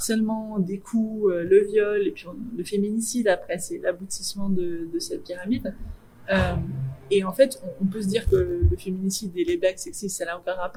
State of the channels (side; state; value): both; identical; correlation 1.00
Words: des coups, le viol, et puis le féminicide, après, c'est l'aboutissement de cette pyramide. Et en fait, on peut se dire que le féminicide et les blagues sexistes, ça n'a aucun